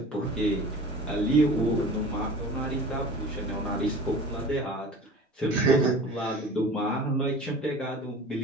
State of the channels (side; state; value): both; normal; correlation 0.41